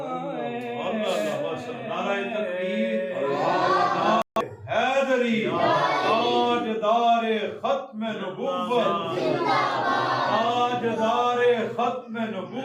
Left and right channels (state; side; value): identical; both; correlation 1.00